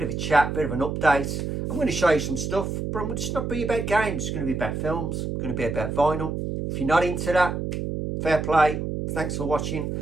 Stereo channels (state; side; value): noise; right; hum, 3 dB below the sound